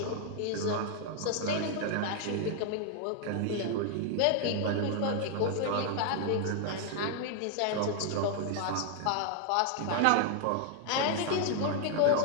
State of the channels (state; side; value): different; both; correlation 0.00